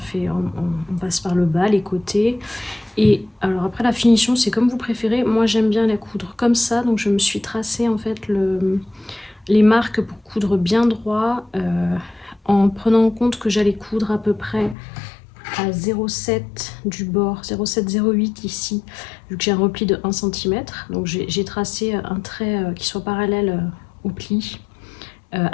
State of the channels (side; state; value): right; drops out; at 14.8 s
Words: passe par le bas, les côtés. Et alors après la finition c'est comme vous préférez, moi j'aime bien la coudre comme ça, donc je me suis tracé en fait les marques pour coudre bien droit en prenant en compte que j'allais coudre à peu près à 0,7 du bord, 0,7-0,8 ici, vu que j'ai un repli de 1 cm. Donc j'ai tracé un trait qui soit parallèle au pli